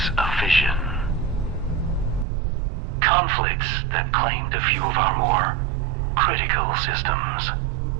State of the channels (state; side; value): drops out; left; at 2.2 s